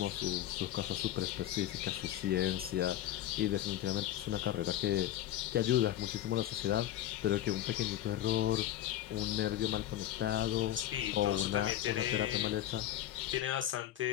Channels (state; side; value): quieter; right; 12.6 dB